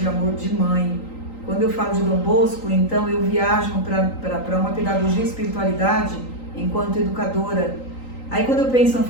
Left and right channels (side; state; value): right; late; 3.9 ms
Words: amor de mãe. Quando eu falo de Dom Bosco, então eu viajo para uma pedagogia e espiritualidade enquanto educadora. Aí quando eu penso em São